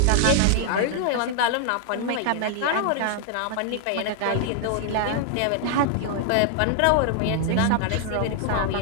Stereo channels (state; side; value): different; both; correlation 0.00